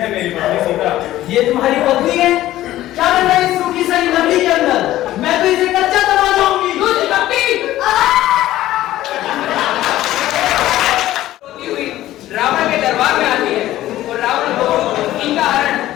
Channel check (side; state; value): right; quieter; 14.6 dB